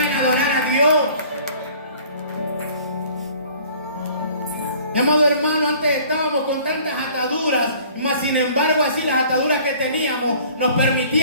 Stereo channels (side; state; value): both; inverted; correlation -0.51